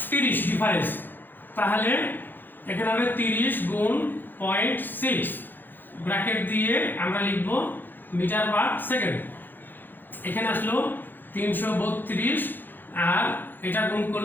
30 ডিফারেন্স, তাহলে এখানে হবে 30 গুণ 0.6 ব্র্যাকেট দিয়ে আমরা লিখব মিটার পার সেকেন্ড। এখানে আসলো 332 আর এটা গুণ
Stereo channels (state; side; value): late; right; 0.091 ms